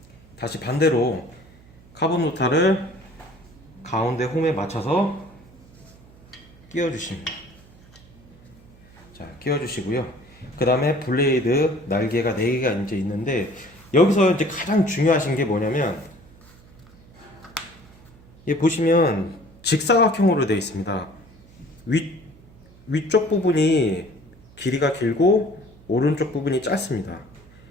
다시 반대로 카본 노타를 가운데 홈에 맞춰서 끼워 주십니다. 자, 끼워주시고요. 그 다음에 블레이드 날개가 4개가 이제 있는데, 여기서 이제 가장 중요하신 게 뭐냐면, 이 보시면 직사각형으로 되어 있습니다. 위쪽 부분이 길이가 길고 오른쪽 부분이 짧습니다.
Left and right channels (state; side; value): noise; right; hum, 24 dB below the sound